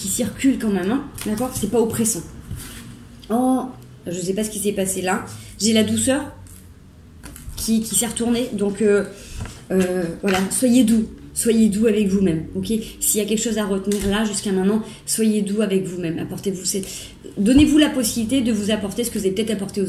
circule quand même, hein, d'accord? C'est pas oppressant. Oh, je sais pas ce qui s'est passé là. J'ai la douceur qui s'est retournée, donc voilà, soyez doux. Soyez doux avec vous-même, ok? S'il y a quelque chose à retenir là, jusqu'à maintenant, soyez doux avec vous-même. Apportez-vous donnez-vous la possibilité de vous apporter ce que vous avez peut-être apporté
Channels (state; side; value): identical; both; correlation 1.00